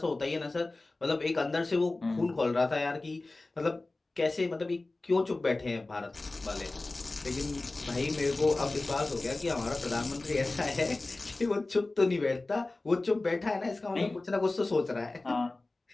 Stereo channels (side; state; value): right; quieter; 3.1 dB